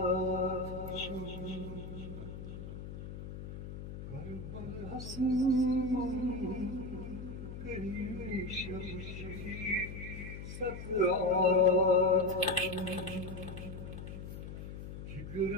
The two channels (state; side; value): noise; left; hum, 9 dB below the sound